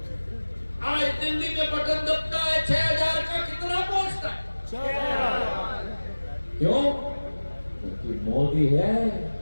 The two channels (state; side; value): inverted; both; correlation -1.00